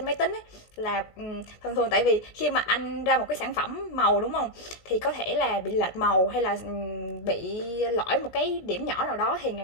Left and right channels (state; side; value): late; right; 17 ms